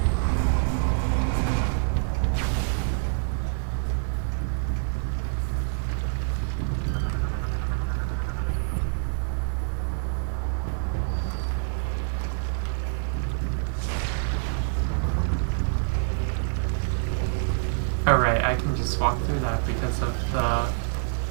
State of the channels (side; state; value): left; silent; digital silence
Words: Alright, I can just walk through that because of